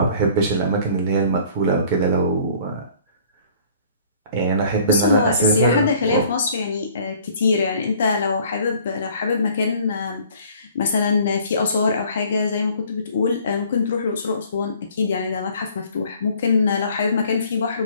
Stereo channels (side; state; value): both; inverted; correlation -0.54